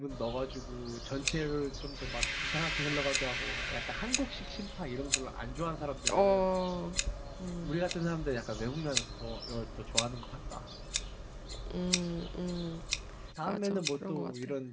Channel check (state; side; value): identical; both; correlation 1.00